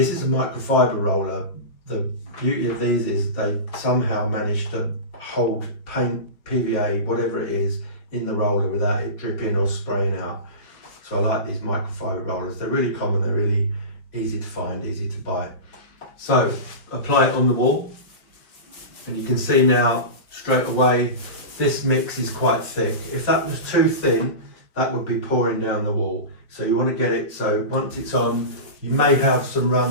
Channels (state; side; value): late; right; 5.1 ms